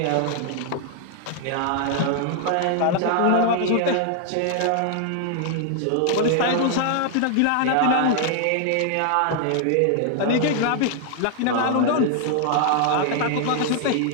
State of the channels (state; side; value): different; both; correlation 0.00